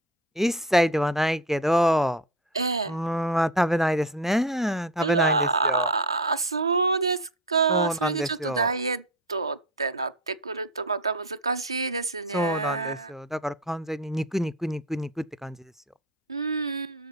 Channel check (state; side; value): normal; both; correlation 0.25